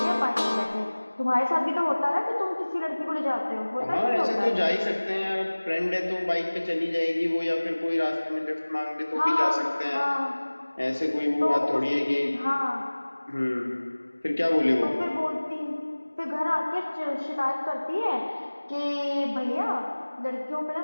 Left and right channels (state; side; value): inverted; both; correlation -1.00